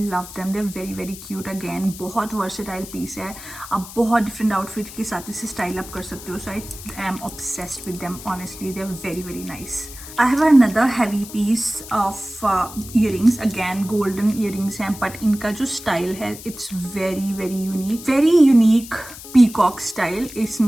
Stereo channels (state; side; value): noise; left; hiss, 14 dB below the sound